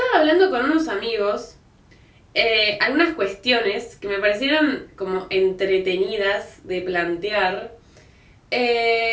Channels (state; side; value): identical; both; correlation 1.00